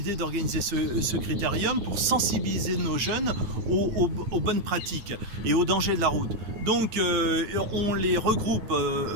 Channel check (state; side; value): late; left; 8.9 ms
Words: d'organiser ce critérium pour sensibiliser nos jeunes aux bonnes pratiques et aux dangers de la route. Donc on les regroupe